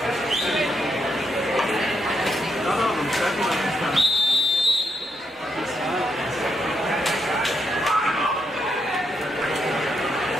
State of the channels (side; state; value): both; normal; correlation 0.80